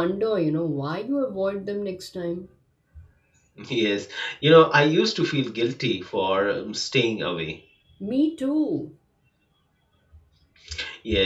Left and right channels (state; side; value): identical; both; correlation 1.00